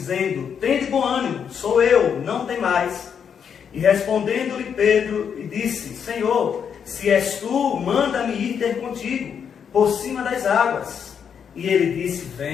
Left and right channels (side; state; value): right; quieter; 7.4 dB